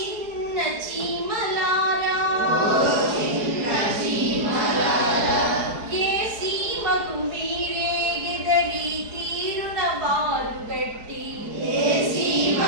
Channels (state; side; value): late; left; 4.7 ms